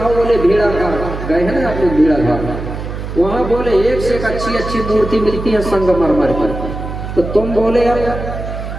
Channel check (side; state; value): right; noise; hum, 7 dB below the sound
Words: बोले भेड़ा घाट गए हैं ना आप लोग, भेड़ा घाट वहाँ बोले एक से एक अच्छी मूर्ति मिलती है संगमरमर पर। तो तुम बोले अब